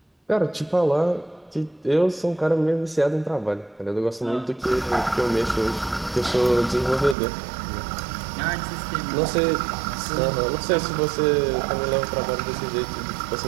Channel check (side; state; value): left; drops out; at 7.2 s